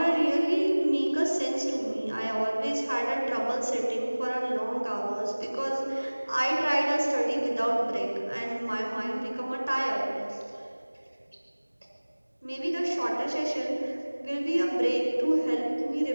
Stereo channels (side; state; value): both; inverted; correlation -1.00